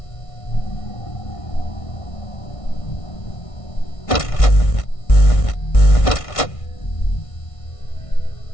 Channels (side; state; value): right; late; 1.6 ms